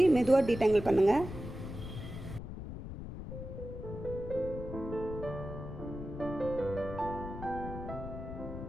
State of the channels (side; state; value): left; noise; rumble, 9 dB below the sound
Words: மெதுவாக டீடாங்கிள் பண்ணுங்கள்.